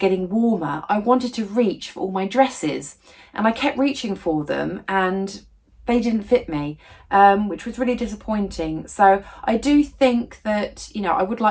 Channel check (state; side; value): identical; both; correlation 1.00